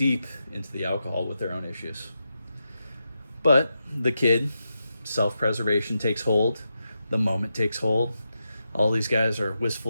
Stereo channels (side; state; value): both; inverted; correlation -0.87